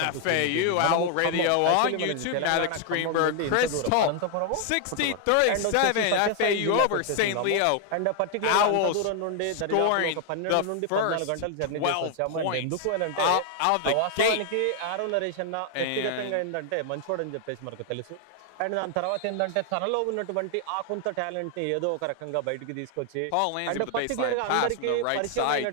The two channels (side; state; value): both; different; correlation 0.00